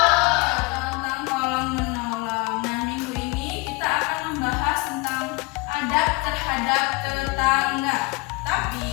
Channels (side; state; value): right; quieter; 25.4 dB